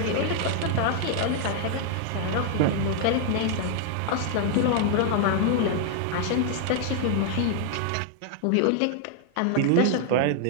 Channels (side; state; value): both; different; correlation 0.00